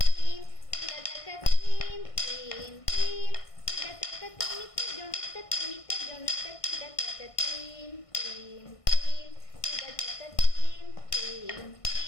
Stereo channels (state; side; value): late; right; 1.5 ms